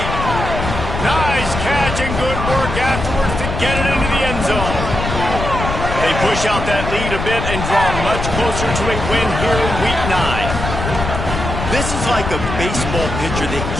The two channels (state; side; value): noise; left; rumble, 4 dB below the sound